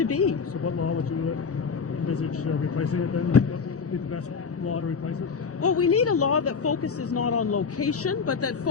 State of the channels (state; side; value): quieter; right; 5.6 dB